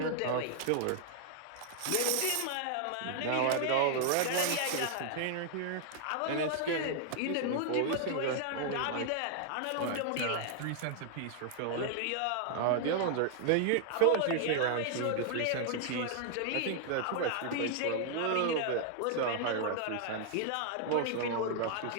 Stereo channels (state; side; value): different; both; correlation 0.00